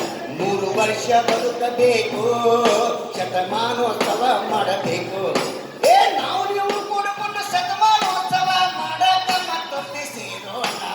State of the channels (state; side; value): identical; both; correlation 1.00